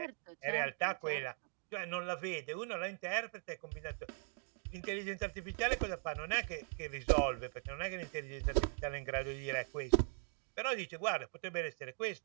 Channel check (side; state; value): left; silent; 51 dB below the other